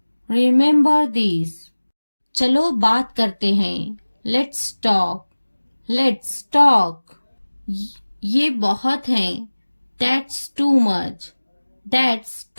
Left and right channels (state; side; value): inverted; both; correlation -1.00